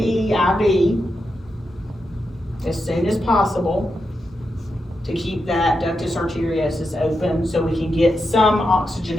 IV as soon as possible to keep that ductus arteriosus open, so we can get some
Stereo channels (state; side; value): normal; both; correlation 0.87